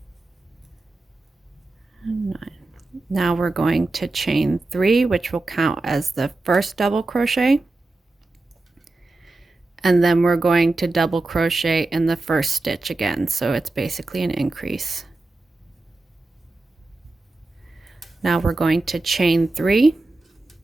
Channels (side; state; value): left; quieter; 3.1 dB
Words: And 9. Now we're going to chain 3, which will count as the first double crochet. And then we're going to double crochet in the first stitch again, so it's basically an increase. Now we're going to chain 3.